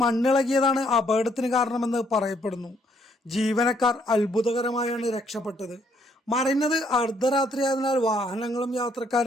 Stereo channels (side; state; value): both; normal; correlation 0.69